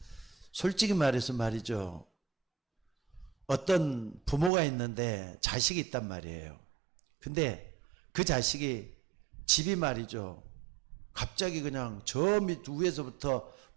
솔직히 말해서 말이죠, 어떤 부모가 있는데 자식이 있단 말이에요. 근데 그 자식이 집이 말이죠, 갑자기 그냥 저 밑 위에서부터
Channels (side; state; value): left; drops out; at 4.5 s